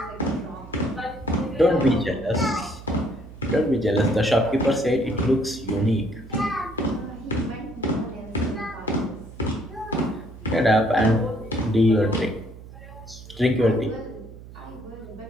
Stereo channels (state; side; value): noise; right; hum, 17 dB below the sound